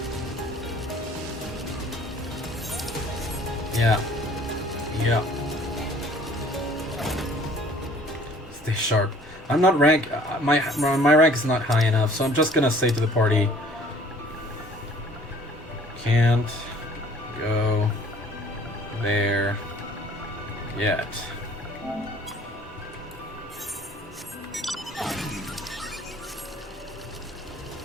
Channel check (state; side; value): normal; both; correlation 0.53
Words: Yeah. Yeah. Stay sharp. I'm not rank. My rank is not high enough, so I'm just gonna say to the party. Can't go there yet.